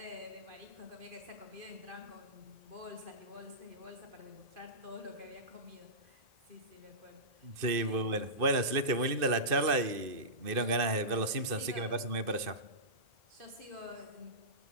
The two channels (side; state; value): left; late; 2.5 ms